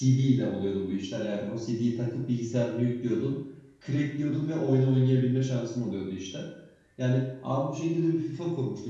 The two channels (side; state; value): both; identical; correlation 1.00